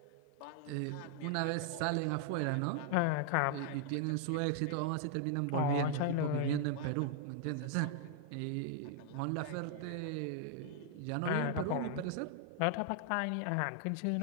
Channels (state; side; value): different; both; correlation -0.01